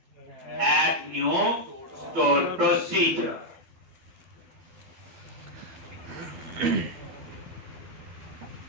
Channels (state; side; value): late; left; 12 ms